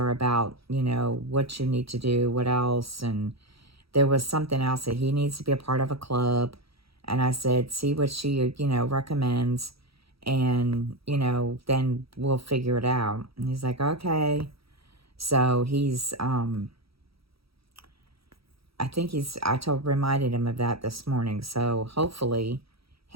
about, what you need to do, what else. And there was something else that he needs to be a part of a club. And I said, see what she, recommends, and, then we'll figure it out. And he's like, okay. So he's, reminded him of that this morning. So hopefully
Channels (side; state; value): left; late; 0.76 ms